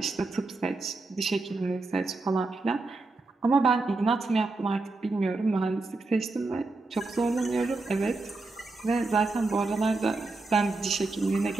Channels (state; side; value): quieter; left; 3.4 dB